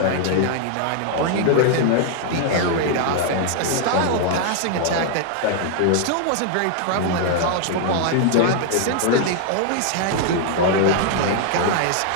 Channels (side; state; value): both; different; correlation 0.00